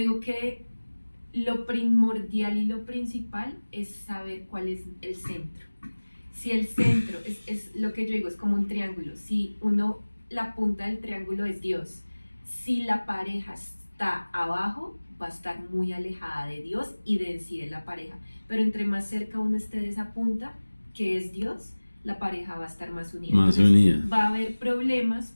que lo primordial y lo principal es saber cuál es el centro. Si el centro es lo que yo digo, es como un triángulo. Si la punta del triángulo es Dios, si la pareja está abajo, va a estar muy alejada de Dios y de sí de la pareja. Pero entre más cerca uno esté de esa punta, que es Dios, la pareja va a estar más unida. Entonces, va a haber problemas,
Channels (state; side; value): inverted; both; correlation -1.00